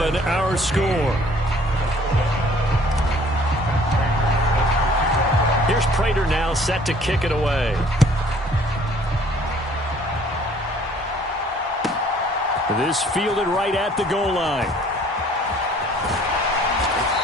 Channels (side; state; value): both; normal; correlation 0.56